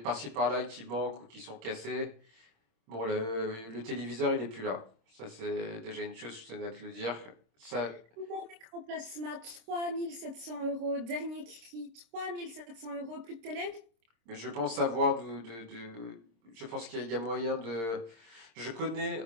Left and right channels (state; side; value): late; left; 26 ms